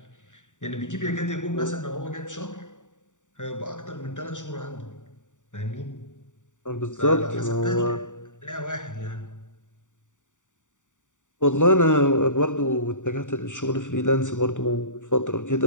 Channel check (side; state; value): right; late; 0.86 ms